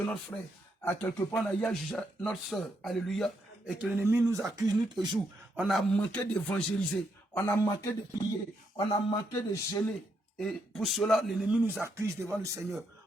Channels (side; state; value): both; normal; correlation 0.78